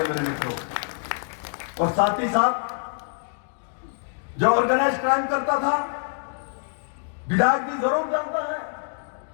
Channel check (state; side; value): silent; right; digital silence